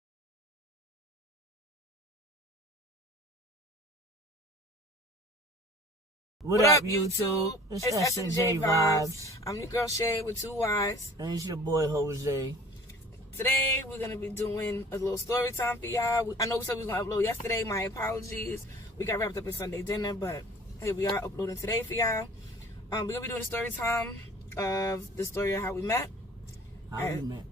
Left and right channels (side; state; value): both; normal; correlation 0.47